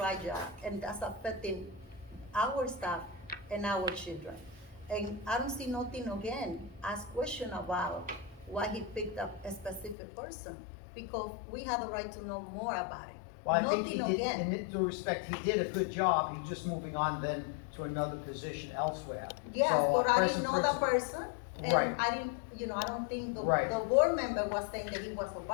right job, and that's affecting our staff and our children. And I don't see nothing again, ask question about why he picked up a specific person, because we have the right to know more about it. Well, I think Nothing he did, again. in due respect, he did a good job, he's just moving on then to another position elsewhere. Yes, So, but I present didn't know that principal- person, and Right. I didn't, I don't think the Right. board member was saying that he was a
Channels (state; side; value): drops out; right; at 10.0 s